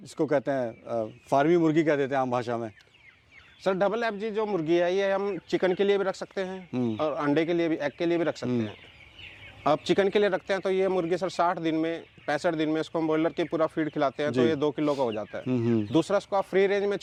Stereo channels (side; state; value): both; identical; correlation 1.00